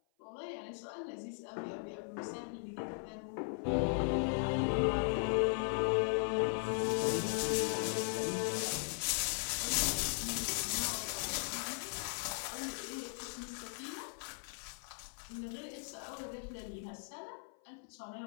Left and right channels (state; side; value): silent; right; 52 dB below the other